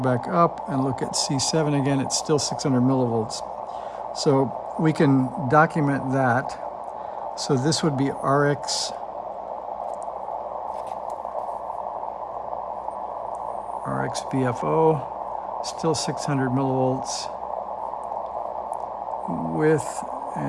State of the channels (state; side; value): identical; both; correlation 1.00